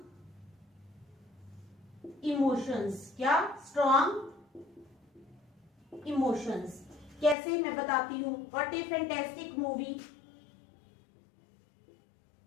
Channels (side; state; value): right; drops out; at 7.4 s